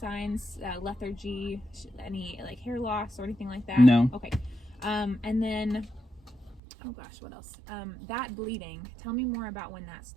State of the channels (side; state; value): left; drops out; at 6.6 s